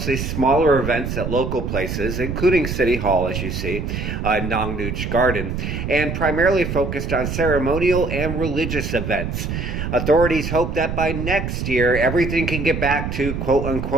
smaller events at local places, including City Hall, as you see, Nong Nooch Garden, and primarily focused on ceremonial and religious events. Authorities hope that by next year, everything can get back to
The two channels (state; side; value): noise; right; rumble, 4 dB below the sound